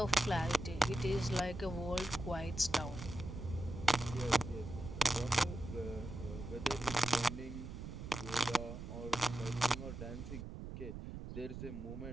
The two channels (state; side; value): noise; right; rumble, 8 dB below the sound